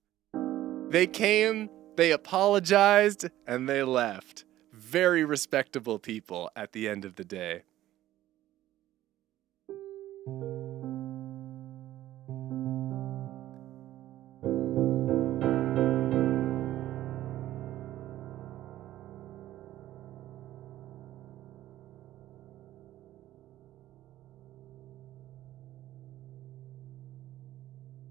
They came, they apologized, and they left. Very respectable people at the end of the day.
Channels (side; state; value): left; quieter; 14.1 dB